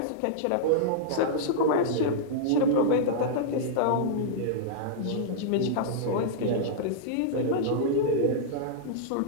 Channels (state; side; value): different; both; correlation -0.02